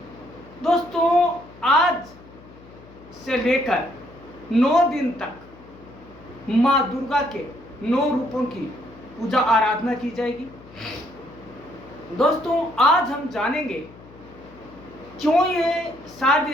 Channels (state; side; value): noise; left; hum, 22 dB below the sound